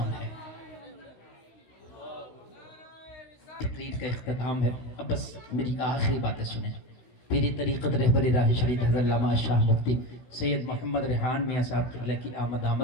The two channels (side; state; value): right; late; 16 ms